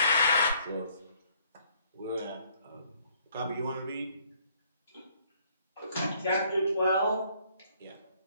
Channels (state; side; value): inverted; both; correlation -0.64